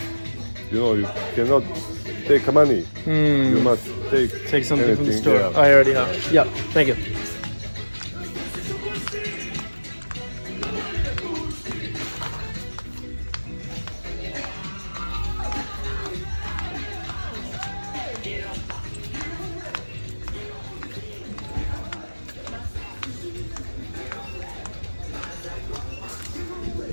You know, you cannot take money. You must Take something from the anything, store. yeah. I already have. Yeah, thank you.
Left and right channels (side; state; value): both; inverted; correlation -1.00